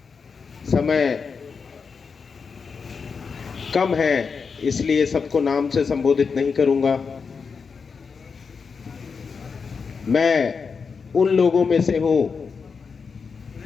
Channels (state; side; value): quieter; right; 5.4 dB